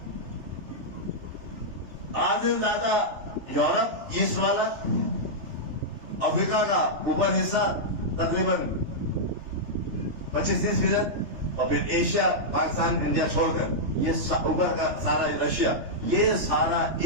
آدھے زیادہ یورپ ایسٹ والا، افریقہ کا اوپر حصہ تقریباً 25-30%، اور پھر ایشیا، پاکستان، انڈیا چھوڑ کر یہ اوپر کا سارا رشیا، یہ سارا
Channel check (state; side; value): late; left; 3.3 ms